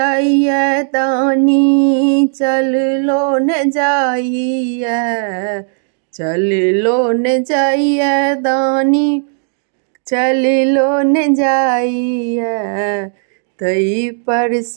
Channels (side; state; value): left; silent; digital silence